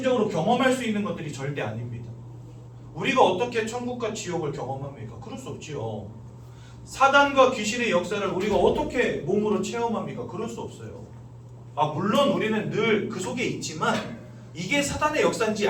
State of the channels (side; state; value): both; identical; correlation 1.00